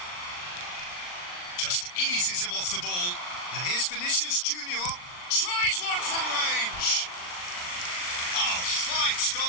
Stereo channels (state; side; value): late; right; 39 ms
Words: Just eases him off the ball. And here's Vinicius Junior. Tries one from range. Oh, fine stop